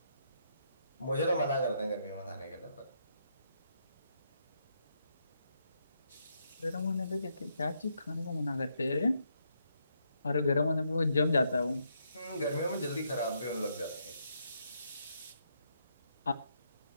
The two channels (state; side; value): inverted; both; correlation -0.77